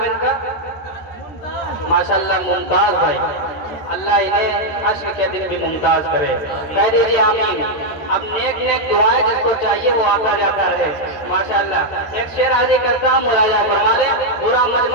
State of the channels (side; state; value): right; late; 13 ms